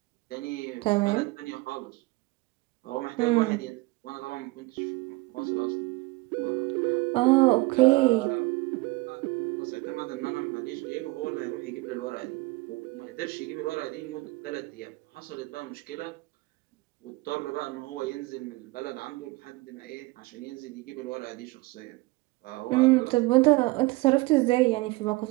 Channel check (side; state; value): left; quieter; 23.0 dB